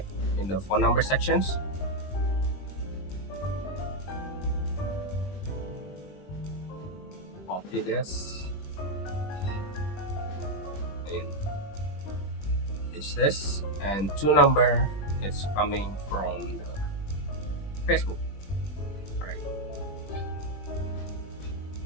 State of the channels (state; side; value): late; right; 20 ms